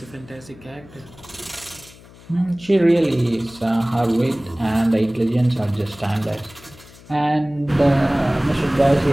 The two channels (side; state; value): left; noise; hum, 22 dB below the sound